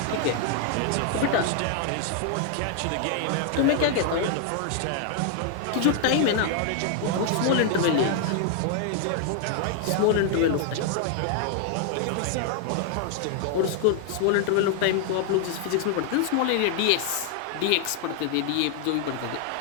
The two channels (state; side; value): different; both; correlation 0.00